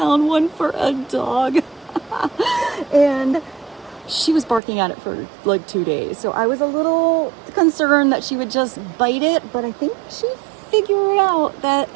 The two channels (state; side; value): drops out; left; at 4.6 s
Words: one for a dog. And she was barking at it for like 2 days. So I was a little concerned that she would just bite it, but I think she figured out that